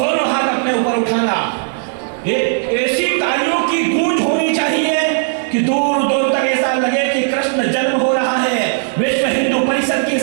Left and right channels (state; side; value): silent; left; 68 dB below the other